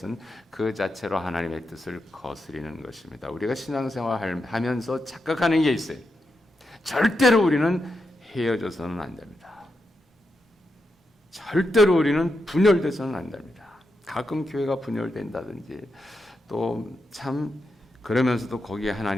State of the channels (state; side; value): normal; both; correlation 0.86